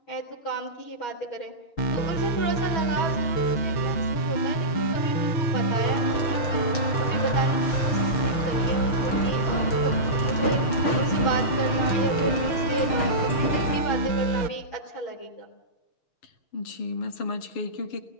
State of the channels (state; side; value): late; right; 6.6 ms